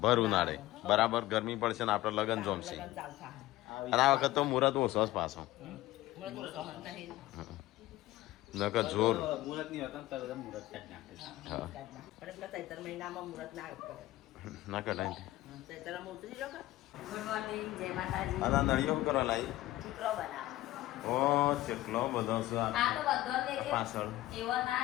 ભર ઉનાળે બરાબર ગરમી પડશે ને આપણે લગ્ન જમશે. લગન ચાલતા. અને આ વખત તો મુહૂર્ત ઓછો જ પાછો. મુરત ઓછો હંતા હે. નકર જોર. હા પણ પેલા ચૈતર મહિનામાં મુરત ના કરે. ના કઢાય. ચૈતરમાં ઉતરી લો કે. ગુડ મોર્નિંગ, જય માતાજી. આ નળીઓ કરવા લાવી. ચીકરો બનાવો. ઓ કેટલો બધો છે આ આ તો બધો લેજે. પાછળ. એવો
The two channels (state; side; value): quieter; right; 16.6 dB